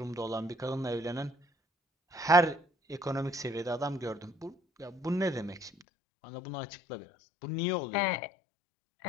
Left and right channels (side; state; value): right; drops out; at 5.9 s